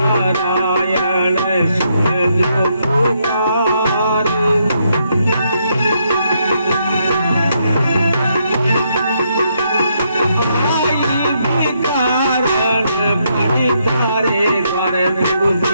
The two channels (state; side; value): inverted; both; correlation -0.76